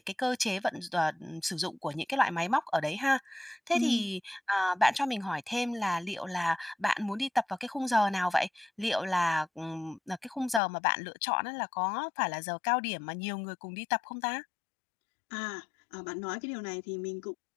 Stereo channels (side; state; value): right; drops out; at 10.6 s